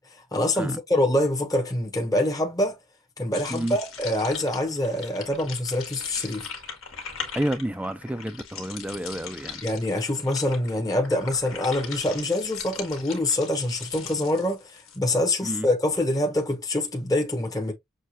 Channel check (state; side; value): normal; both; correlation 0.62